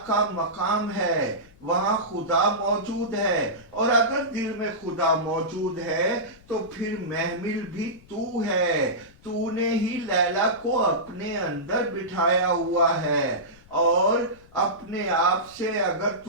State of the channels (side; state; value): left; noise; rumble, 26 dB below the sound